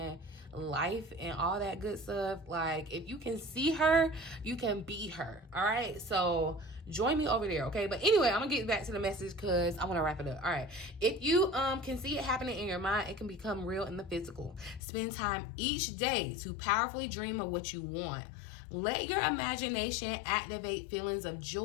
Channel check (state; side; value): drops out; right; at 14.8 s